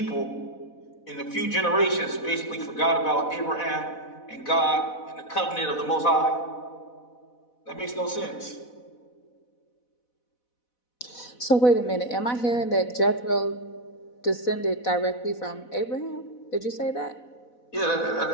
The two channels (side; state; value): right; late; 4.1 ms